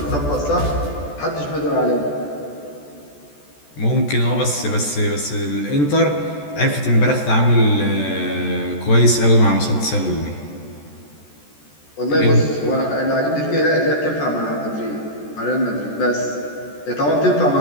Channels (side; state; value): right; late; 14 ms